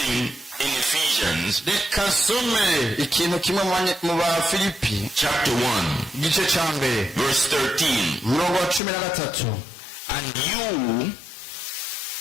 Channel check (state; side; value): drops out; right; at 8.8 s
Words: in Ephesians Reka some ikintu kimwe mu Bafilipi chapter 1, igice cya mbere verse 13. umurongo wa 13. And you